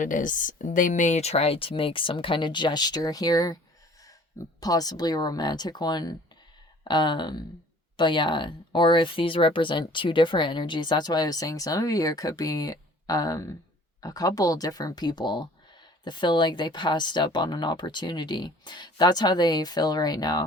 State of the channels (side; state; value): both; normal; correlation 0.51